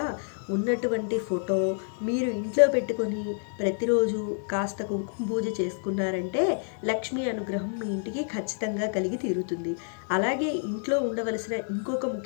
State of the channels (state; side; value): silent; right; 58 dB below the other